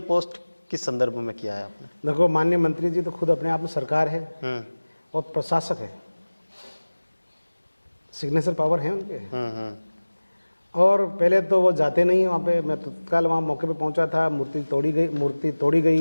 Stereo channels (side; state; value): both; inverted; correlation -1.00